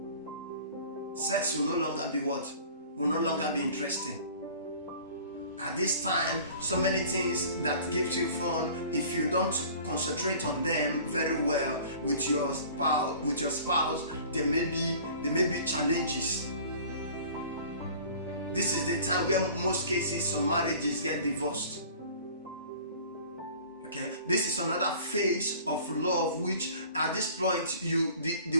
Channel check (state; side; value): inverted; both; correlation -0.46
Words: Sex will no longer be what? Will no longer be interesting. At this time, so many things that gives you fun, if you don't concentrate on them very well with your spouse, there may be challenges. This is the time where most cases some marriages get divorced. Okay, this is another phase of love, which at this point